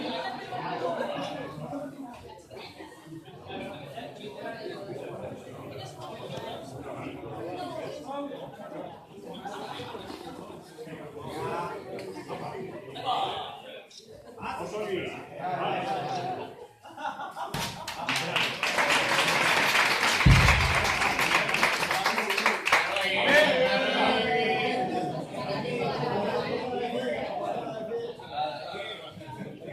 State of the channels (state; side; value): identical; both; correlation 1.00